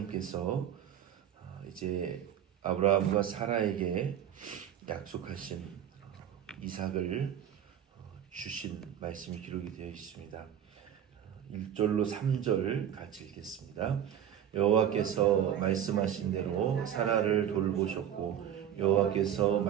이제 아브라함과 사라에게 약속하신 이삭을 주신 말씀이 기록이 되어 있습니다. 1절로 3절 같이 읽겠습니다. 여호와께서 말씀하신 대로 사라를 돌보셨고 여호와께서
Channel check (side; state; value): left; quieter; 9.9 dB